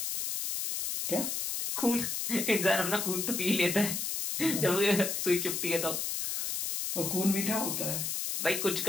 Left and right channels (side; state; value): left; noise; hiss, 2 dB below the sound